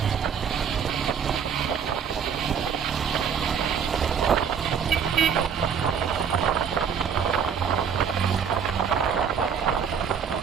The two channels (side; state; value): left; quieter; 7.2 dB